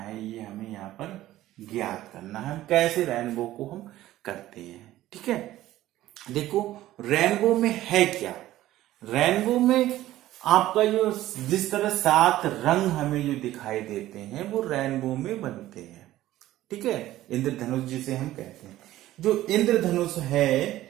ये हमें यहाँ पर ज्ञात करना है कैसे रेनबो को हम करते हैं। ठीक है, देखो रेनबो में है क्या, रेनबो में आपका जो जिस तरह 7 रंग हमें जो दिखाई देते हैं वो रेनबो में बनते हैं। ठीक है, इंद्रधनुष जिसे हम कहते हैं, जो इंद्रधनुष है,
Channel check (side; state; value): left; quieter; 14.8 dB